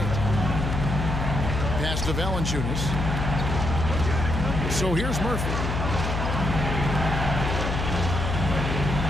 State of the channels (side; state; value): left; noise; hum, 2 dB below the sound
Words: Pass to Valanciunas. So here's Murphy.